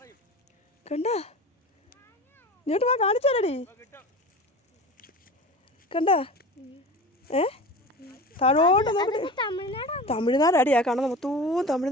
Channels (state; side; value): normal; both; correlation 0.33